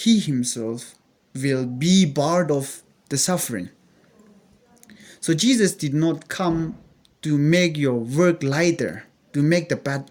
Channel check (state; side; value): identical; both; correlation 1.00